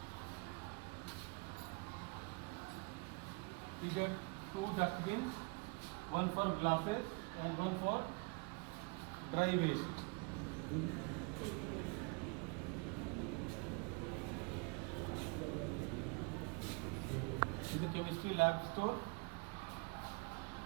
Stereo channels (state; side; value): quieter; left; 29.8 dB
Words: These are 2 dustbins, one for glasses and one for dry waste. This is the chemistry lab store.